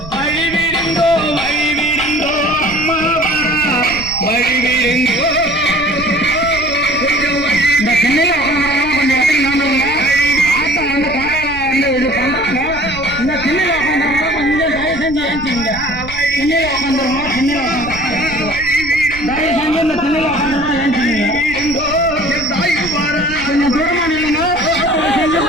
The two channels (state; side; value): noise; right; rumble, 14 dB below the sound